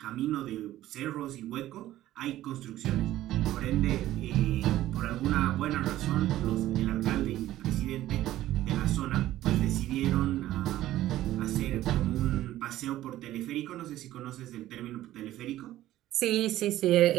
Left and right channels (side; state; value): left; quieter; 14.4 dB